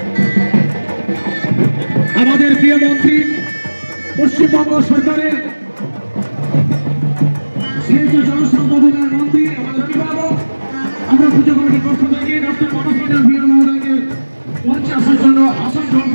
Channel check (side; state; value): both; inverted; correlation -1.00